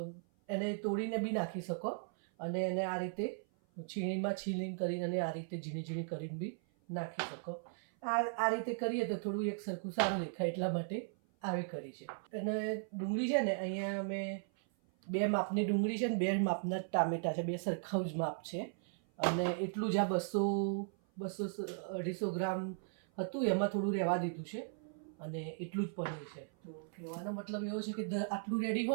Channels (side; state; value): left; silent; 53 dB below the other